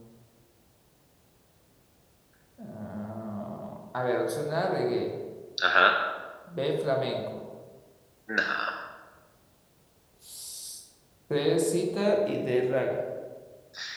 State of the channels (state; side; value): identical; both; correlation 1.00